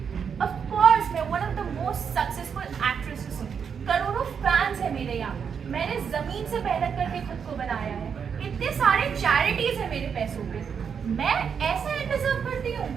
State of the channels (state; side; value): quieter; left; 6.9 dB